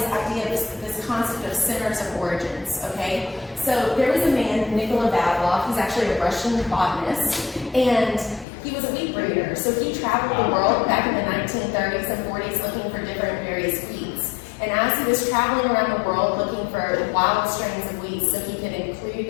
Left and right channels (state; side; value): drops out; right; at 8.5 s